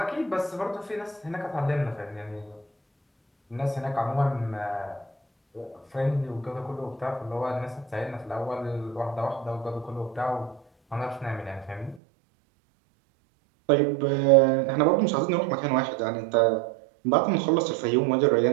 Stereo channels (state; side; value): drops out; left; at 12.0 s